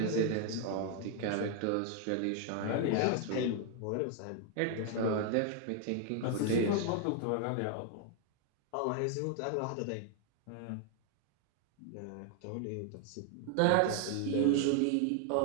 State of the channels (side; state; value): both; different; correlation 0.00